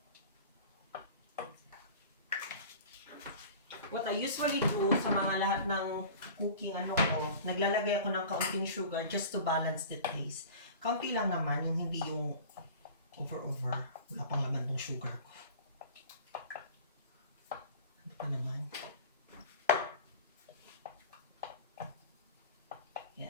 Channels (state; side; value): inverted; both; correlation -0.40